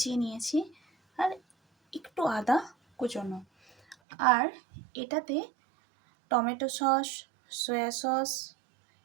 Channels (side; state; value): left; drops out; at 4.0 s